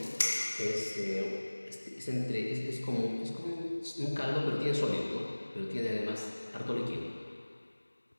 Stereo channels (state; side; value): inverted; both; correlation -1.00